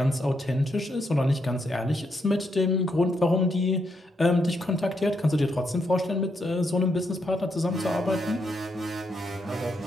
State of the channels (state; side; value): normal; both; correlation 0.79